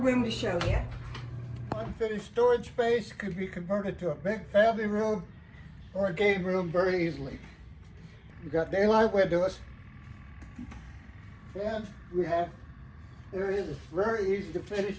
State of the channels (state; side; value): identical; both; correlation 1.00